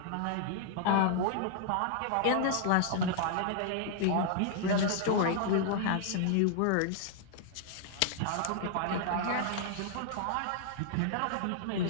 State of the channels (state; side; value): different; both; correlation -0.01